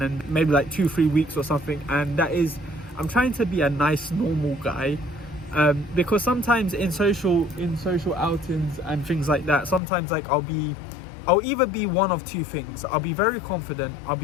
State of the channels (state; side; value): drops out; right; at 9.8 s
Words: and maybe like 2-3 weeks or something, and that is I'm trying to be a nice normal guy. Because sometimes in social outings and things like that, sometimes like I'll either be one of two things. I'll be very confident, I'll